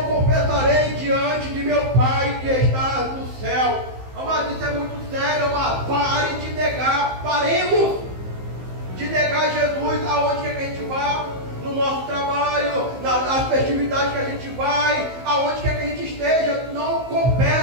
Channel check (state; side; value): late; left; 15 ms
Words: confessarei diante de meu Pai que está no céu. Amado, isso é muito sério, amado. Pare de negar, paremos de negar Jesus aonde quer que a gente vá, no nosso trabalho, nas festividades que a gente vai, aonde quer que a gente esteja. Não